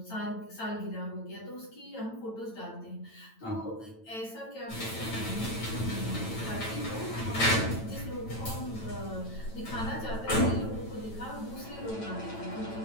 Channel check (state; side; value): late; right; 9.0 ms